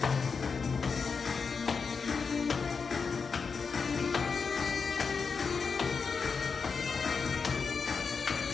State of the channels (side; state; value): right; quieter; 5.3 dB